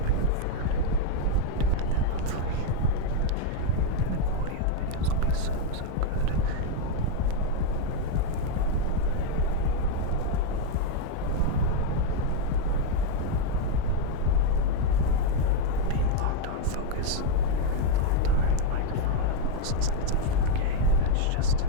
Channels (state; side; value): different; both; correlation 0.01